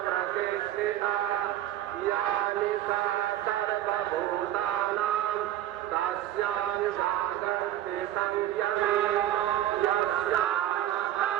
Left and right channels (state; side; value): quieter; left; 12.7 dB